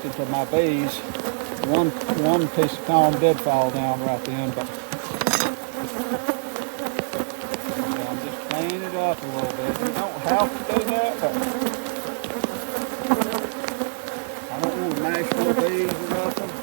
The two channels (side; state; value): left; silent; 62 dB below the other